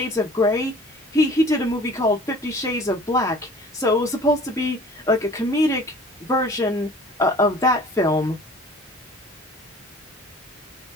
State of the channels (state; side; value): normal; both; correlation 0.48